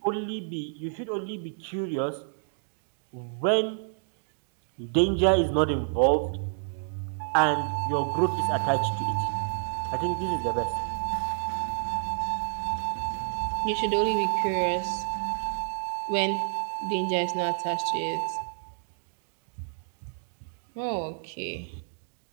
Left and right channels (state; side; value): silent; left; digital silence